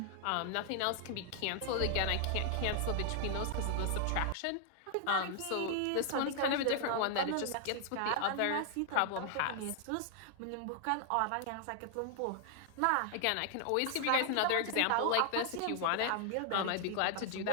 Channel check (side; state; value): both; different; correlation 0.00